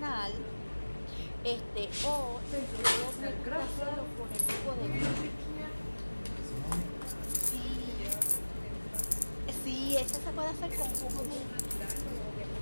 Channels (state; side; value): inverted; both; correlation -1.00